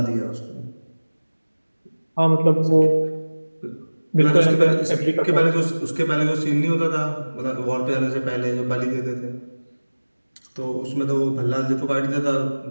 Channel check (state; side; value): inverted; both; correlation -1.00